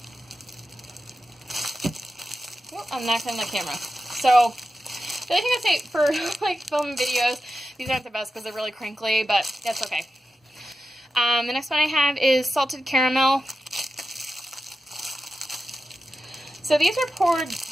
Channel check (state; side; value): normal; both; correlation 0.91